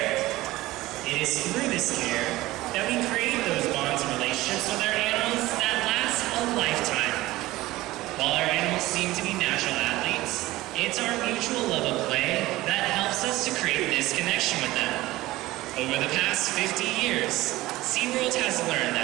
It is through this care that we create those bonds and relationships with our animals that last a lifetime. While our animals seem to be natural athletes, it's our mutual love of play that helps us to create this connection with them. Over the past 50 years, SeaWorld has learned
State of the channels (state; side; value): quieter; left; 17.9 dB